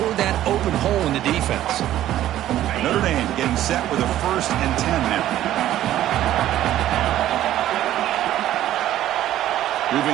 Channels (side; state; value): left; quieter; 13.0 dB